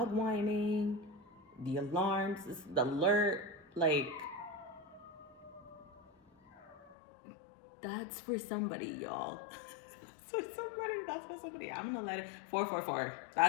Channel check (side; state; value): right; drops out; at 7.0 s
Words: whining, the alarms, the alert, like, that's for somebody, y'all. That's for somebody. I'm gonna let it, 444.